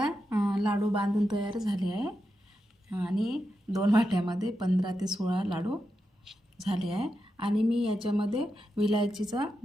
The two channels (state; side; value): normal; both; correlation 0.88